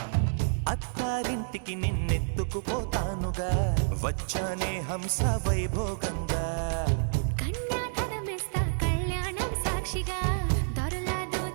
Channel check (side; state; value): left; silent; 58 dB below the other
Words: అత్తారింటికి నిన్నెత్తుకుపోతానుగా వచ్చానే హంస వైభోగంగా కన్యాధనమిస్తా కళ్యాణం సాక్షిగా దొరలా